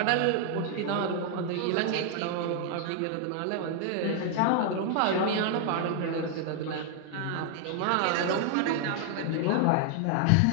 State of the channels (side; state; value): both; different; correlation 0.00